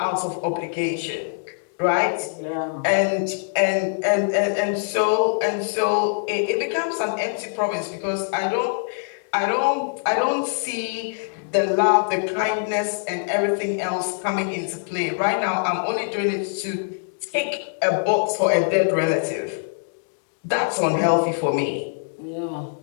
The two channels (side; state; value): right; silent; digital silence